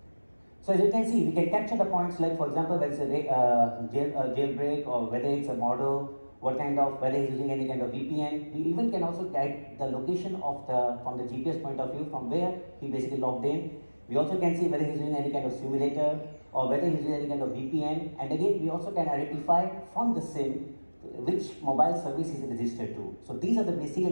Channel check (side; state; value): both; inverted; correlation -1.00